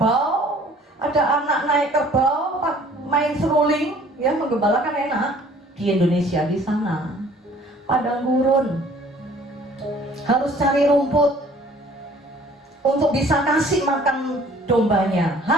ada anak naik kerbau, main seruling, ya menggembalakan enak. Di Indonesia di sana padang gurun, harus cari rumput untuk bisa kasih makan dombanya,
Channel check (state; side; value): normal; both; correlation 0.54